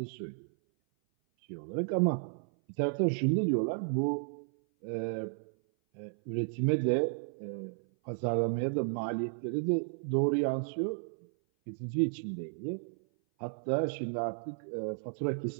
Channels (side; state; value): left; silent; 56 dB below the other